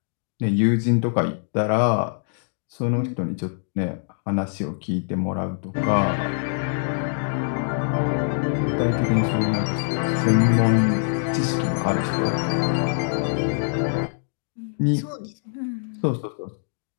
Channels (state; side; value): silent; right; digital silence